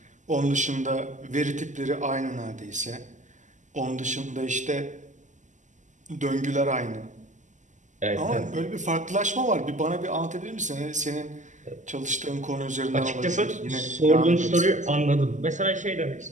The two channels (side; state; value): left; late; 0.36 ms